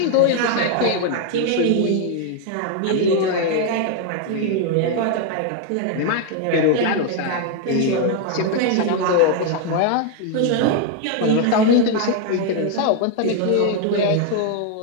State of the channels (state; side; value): different; both; correlation 0.01